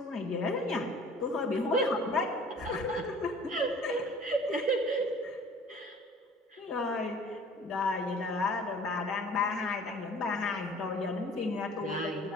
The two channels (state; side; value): normal; both; correlation 0.49